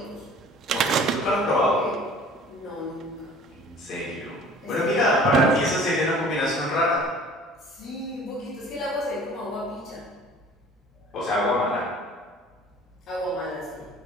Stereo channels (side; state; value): both; normal; correlation 0.48